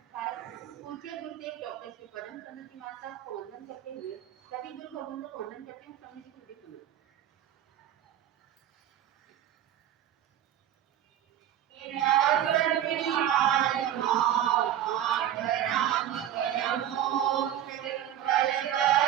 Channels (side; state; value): left; quieter; 11.2 dB